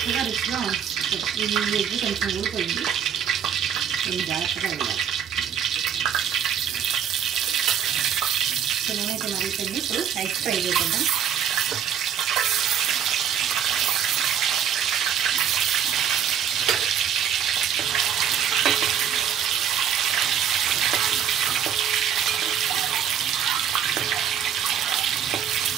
రుచిగా వస్తుంది. ఈ ఎగ్ కొంచెం ఊడిపోయింది, ఇది జాగ్రత్తగా వెళ్ళాలి. సో నేనైతే మరుగుతుంది. ఇప్పుడు ఎగ్ ఫ్రై చేద్దాం.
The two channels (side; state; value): left; quieter; 8.7 dB